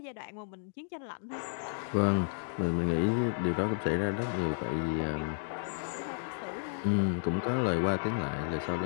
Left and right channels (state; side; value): silent; right; digital silence